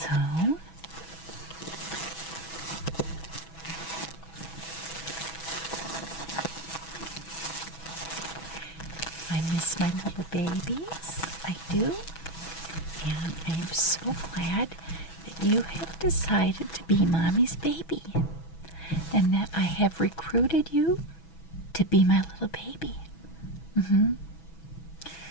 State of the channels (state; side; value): late; right; 6.1 ms